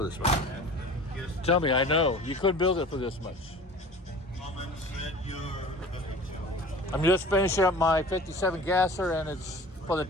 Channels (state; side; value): normal; both; correlation 0.42